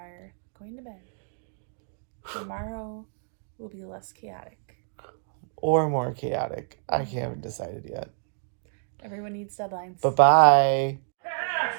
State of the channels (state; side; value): silent; left; digital silence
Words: going to bed. Tomorrow will be less chaotic. Or more chaotic. I haven't decided yet. Everyone needs deadlines. Bye-bye.